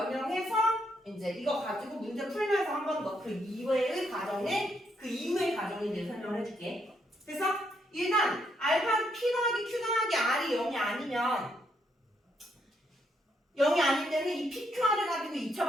이제 이거 가지고 문제 풀면서 한 번 더 그 이후의 과정에 그 이후의 과정에 대해 설명을 해줄게. 그래서 일단 알파 P 더하기 Q 더하기 R이 0이 아니면 0이 아닐 때는 이 PQR을 가지고 2차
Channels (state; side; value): normal; both; correlation 0.75